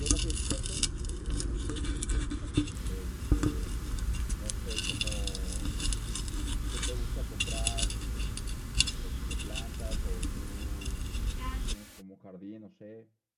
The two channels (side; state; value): both; identical; correlation 1.00